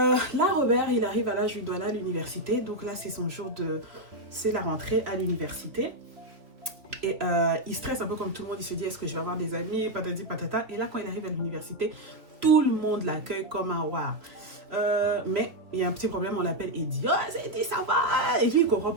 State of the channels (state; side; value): late; left; 2.8 ms